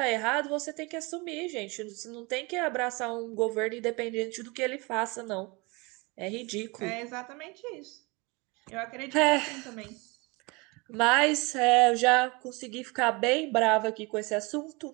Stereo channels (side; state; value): left; quieter; 26.8 dB